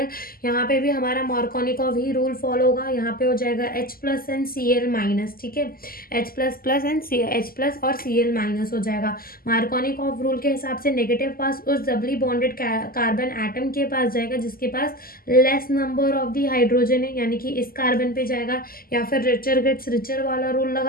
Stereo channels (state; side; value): late; right; 0.42 ms